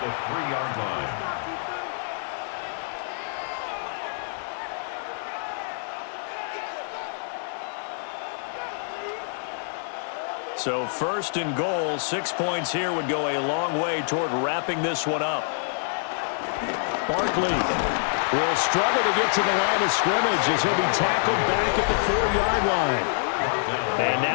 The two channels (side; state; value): right; silent; digital silence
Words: So first and goal, 6 points here would go a long way toward wrapping this one up. Barkley will struggle to get to the line of scrimmage as he'll be tackled back at the 4-yard line. And